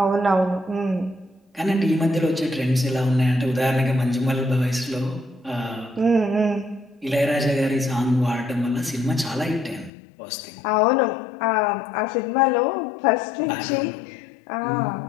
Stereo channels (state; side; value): drops out; right; at 9.9 s